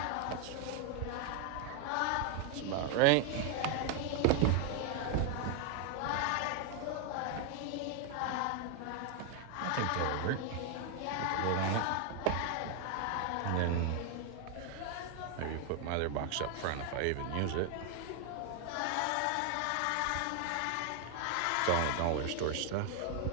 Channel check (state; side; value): different; both; correlation 0.01